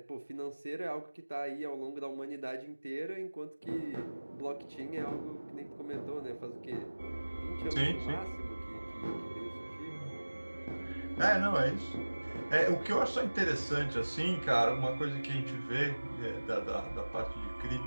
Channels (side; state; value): both; inverted; correlation -1.00